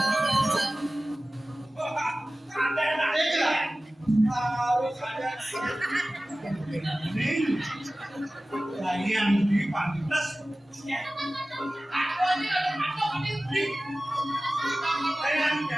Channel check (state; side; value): normal; both; correlation 0.97